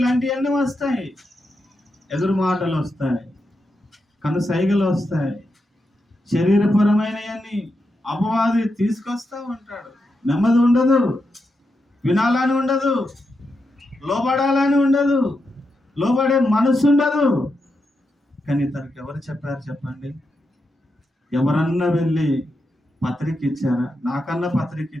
వస్తాయి, ఎదురు మాటలు వస్తాయి, కనుసైగలు వస్తాయి, శరీరపరమైనవన్నీ అపవాది తీసుకొస్తా ఉంటాడు. నెమ్మది ఉండదు, వినాలని ఉండదు, లోబడాలని ఉండదు, లోబడే మనసు ఉండదు. కానీ తనకు ఎవరు చెప్పారు చెప్పండి? ఎవరన్నా వెళ్ళి పత్రిక ఇచ్చారా? నాకన్నా పత్రిక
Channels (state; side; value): normal; both; correlation 0.86